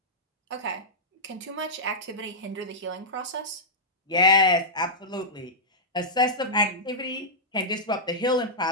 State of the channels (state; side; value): normal; both; correlation -0.12